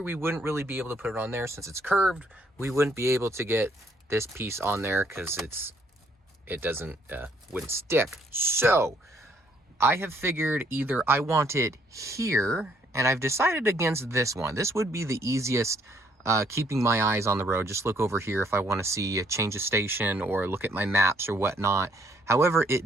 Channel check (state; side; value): normal; both; correlation 0.67